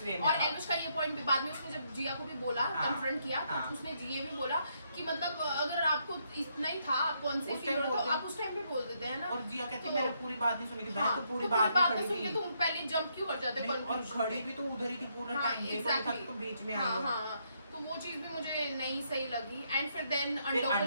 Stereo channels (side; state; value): both; inverted; correlation -0.75